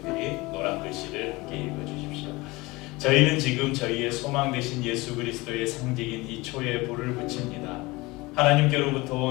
노란 글씨를 함께 읽어주십시오. 저희는 지금 저희의 소망 되신 예수 그리스도의 상징인 이 초에 불을 붙입니다. 하나님께로부터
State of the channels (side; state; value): right; quieter; 22.5 dB